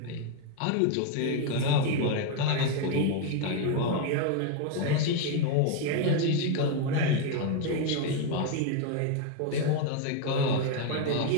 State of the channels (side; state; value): both; different; correlation 0.01